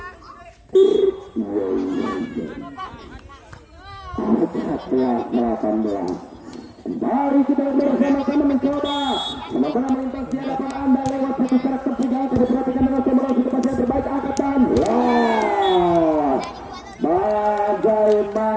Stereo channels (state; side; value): identical; both; correlation 1.00